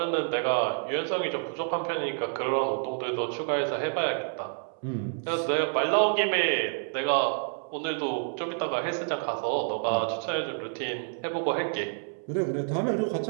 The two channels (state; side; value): silent; left; 59 dB below the other